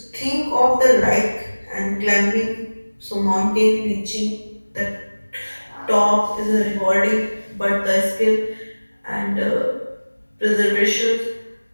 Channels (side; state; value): both; inverted; correlation -1.00